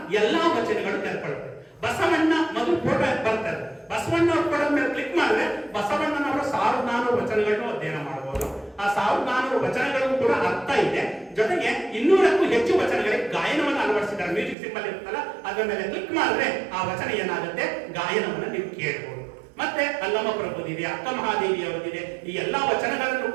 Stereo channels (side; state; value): left; drops out; at 14.6 s